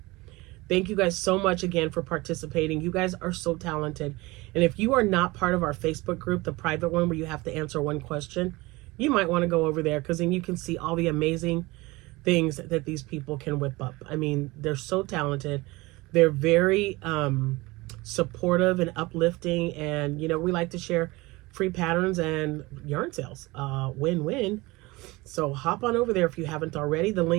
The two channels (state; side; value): quieter; left; 22.2 dB